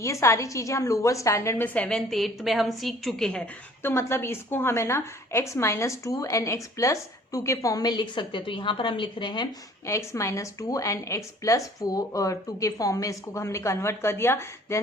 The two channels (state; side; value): normal; both; correlation 0.54